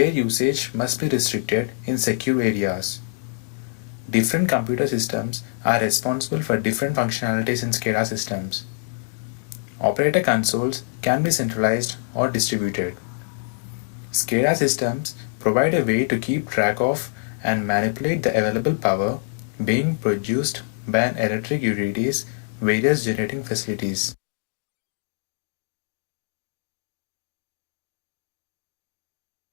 usage must be restricted in secure areas. Different computer systems are responsible for different functionalities in SCADA systems. Operator consoles can be centralized or distributed. SCADA systems provide a way to keep track of and manipulate the available power being produced by an electric utility's various generating facilities.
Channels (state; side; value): silent; right; digital silence